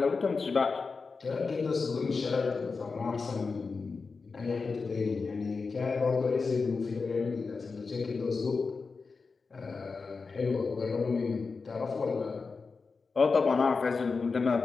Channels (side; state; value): right; quieter; 4.6 dB